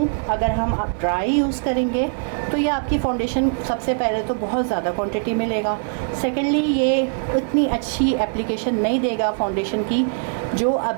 अगर हम आप ड्राई यूज़ करेंगे तो ये आपकी फाउंडेशन सबसे पहले तो बहुत ज़्यादा क्वांटिटी में लेगा। सेकेंडली ये उतनी अच्छी एप्लीकेशन नहीं देगा फाउंडेशन की जो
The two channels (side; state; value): left; silent; digital silence